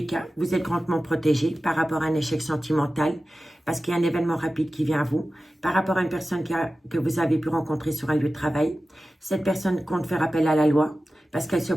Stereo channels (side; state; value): both; normal; correlation 0.95